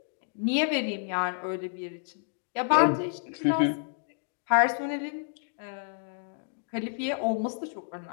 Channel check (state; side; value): silent; right; digital silence